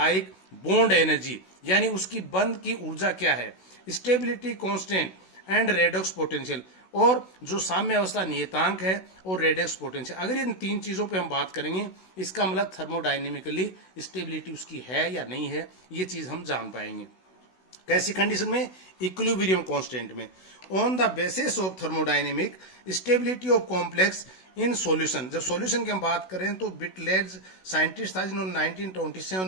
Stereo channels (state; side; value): late; right; 16 ms